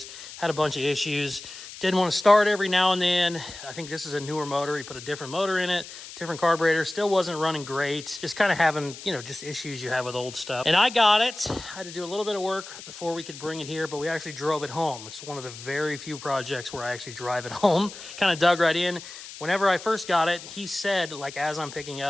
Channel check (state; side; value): noise; left; hiss, 14 dB below the sound